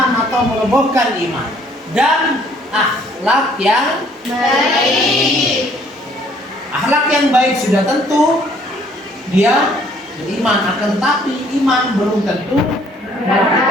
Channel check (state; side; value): normal; both; correlation 0.61